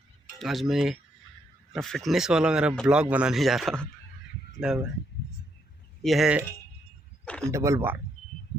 आज मैं फिटनेस वाला मेरा ब्लॉग बनाने जा रहा हूँ। मतलब यह है डबल बार,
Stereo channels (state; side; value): normal; both; correlation 0.76